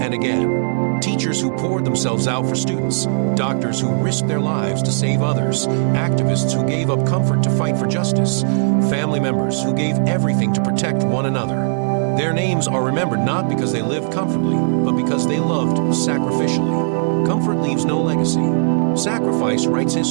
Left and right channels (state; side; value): silent; left; digital silence